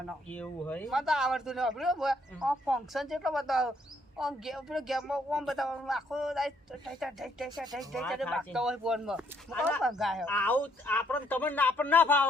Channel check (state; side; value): normal; both; correlation 0.70